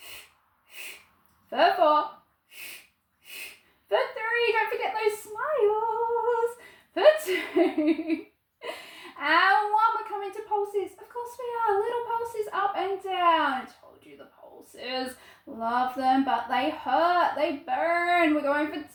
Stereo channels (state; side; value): identical; both; correlation 1.00